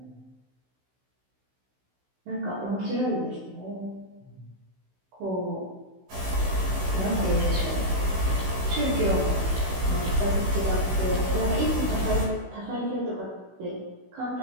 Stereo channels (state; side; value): late; left; 16 ms